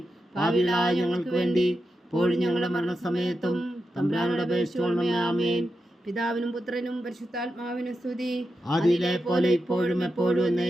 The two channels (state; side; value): normal; both; correlation 0.89